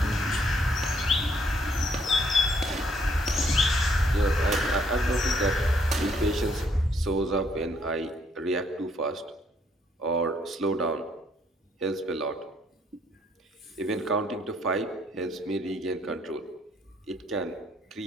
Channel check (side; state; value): both; normal; correlation 0.69